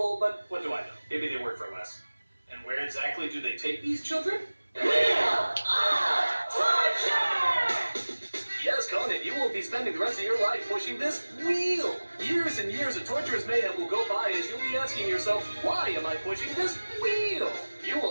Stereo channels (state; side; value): inverted; both; correlation -1.00